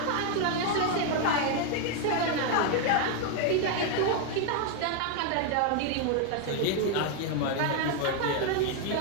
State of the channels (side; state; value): both; different; correlation 0.01